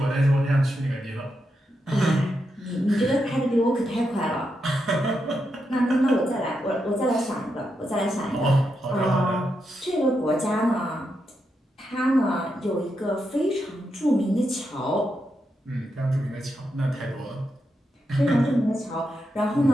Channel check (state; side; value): normal; both; correlation 0.84